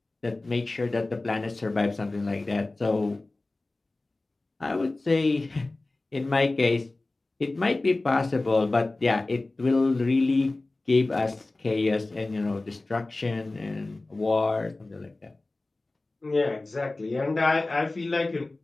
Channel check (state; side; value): quieter; right; 3.0 dB